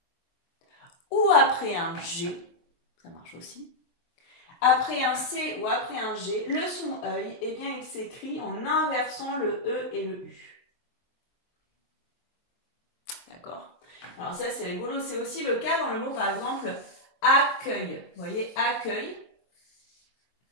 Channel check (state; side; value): late; right; 23 ms